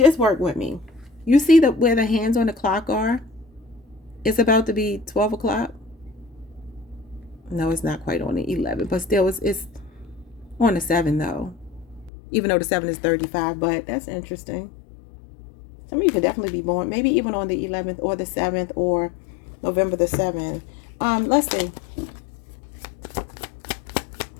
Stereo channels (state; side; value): drops out; right; at 12.1 s